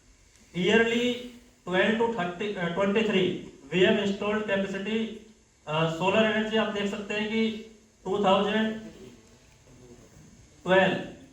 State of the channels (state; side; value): identical; both; correlation 1.00